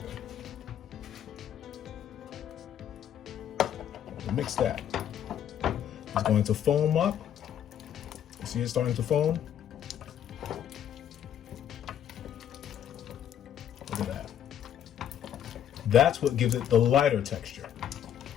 Mix that. It's going to foam up. You see it starting to foam? Look at that. That's what gives it the lighter texture.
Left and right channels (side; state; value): right; quieter; 9.8 dB